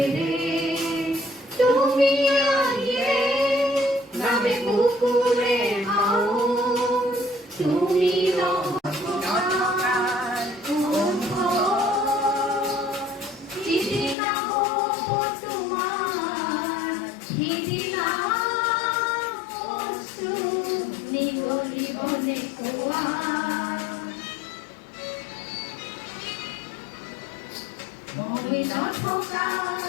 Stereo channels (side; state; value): right; drops out; at 14.2 s